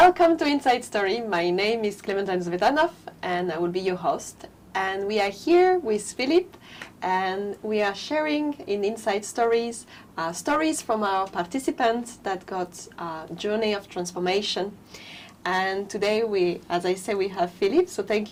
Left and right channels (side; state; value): both; identical; correlation 1.00